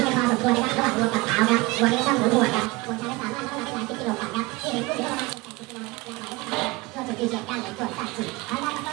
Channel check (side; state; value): left; quieter; 22.8 dB